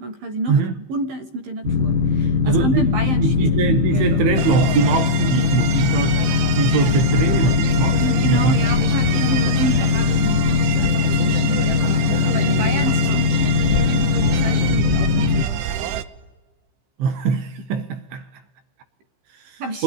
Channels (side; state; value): left; late; 15 ms